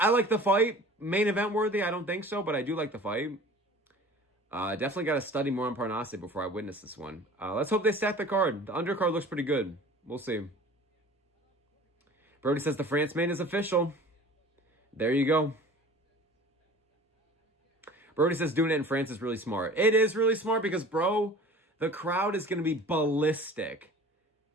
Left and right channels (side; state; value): both; normal; correlation 0.43